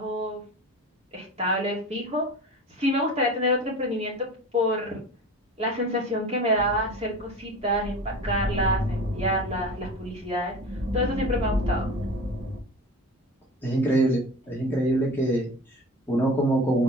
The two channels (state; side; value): normal; both; correlation 0.35